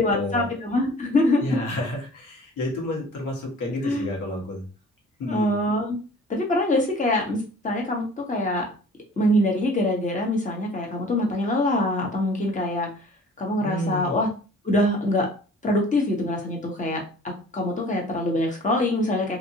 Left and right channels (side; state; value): both; normal; correlation 0.48